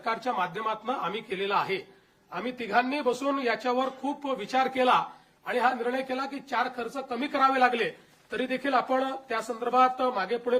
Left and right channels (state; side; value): identical; both; correlation 1.00